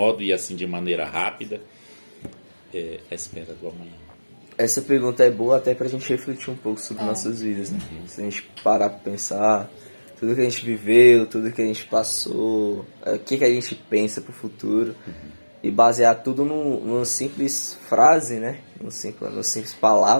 e assim de maneira rápida, é a espera do amanhã. Essa pergunta é boa até pra gente refletir um pouco sobre nossas vidas, né? Se a gente parar pra pensar, tudo que a gente viveu, tudo que a gente passou, o que a gente pensa pro futuro, e basear tudo numa simples frase, né? Numa simples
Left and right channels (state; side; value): inverted; both; correlation -1.00